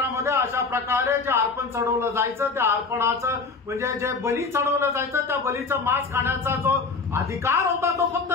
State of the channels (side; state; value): right; quieter; 4.3 dB